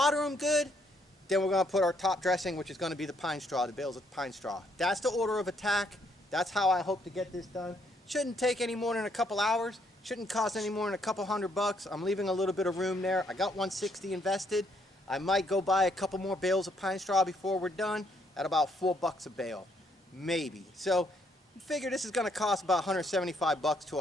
them good, then we're going to put our top dressing, which is going to be the pine straw, the bales of pine straw. That's the order of attack. That's how I hope to get this done. Shouldn't take any more than a couple hours. Shouldn't cost any more than a couple $100. I'm leaving a little bit of room there. I got 160 invested. I might go buy a couple more bales of pine straw before we're done at about $4 a bale, maybe. So figure this is going to cost about $175 to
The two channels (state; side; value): normal; both; correlation 0.71